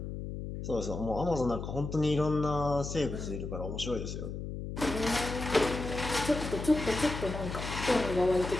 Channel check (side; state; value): left; noise; hum, 6 dB below the sound